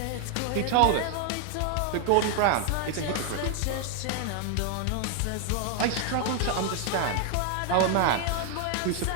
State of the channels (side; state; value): both; different; correlation 0.00